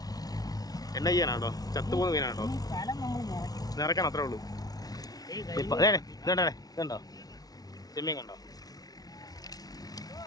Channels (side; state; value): right; late; 0.18 ms